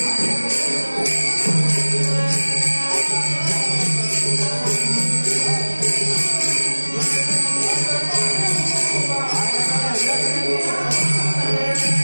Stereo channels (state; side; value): inverted; both; correlation -1.00